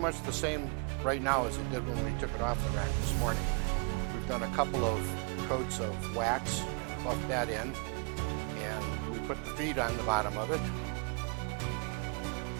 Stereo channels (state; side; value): quieter; left; 34.8 dB